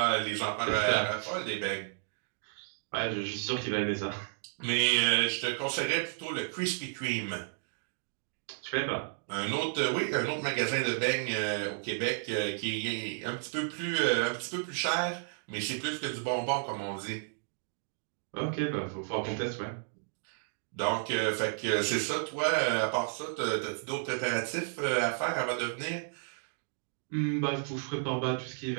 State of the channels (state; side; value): silent; left; digital silence